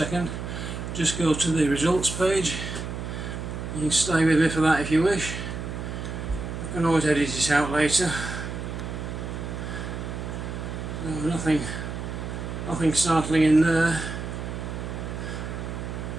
Just go to the results page. You can stay with me for that if you wish. I can always edit this out later. No, nothing startling in there.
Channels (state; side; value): noise; right; hum, 6 dB below the sound